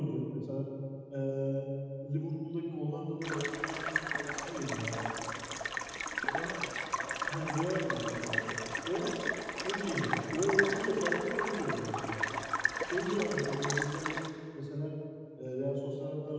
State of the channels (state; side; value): identical; both; correlation 1.00